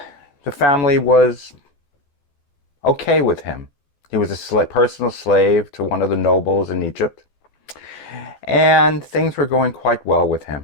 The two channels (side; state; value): right; late; 12 ms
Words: The family was okay with him. He was a personal slave to one of the nobles in Egypt, and things were going quite well with